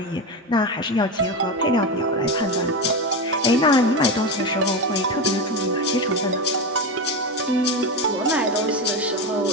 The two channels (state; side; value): normal; both; correlation 0.16